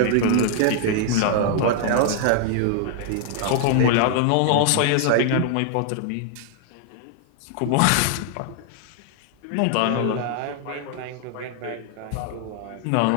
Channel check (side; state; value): both; different; correlation 0.00